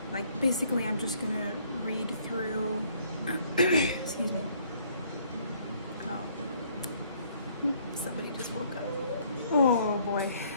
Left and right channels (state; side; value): inverted; both; correlation -0.63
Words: like, basically I'm just going to read through, excuse me. Oh, somebody just woke up. Oh boy,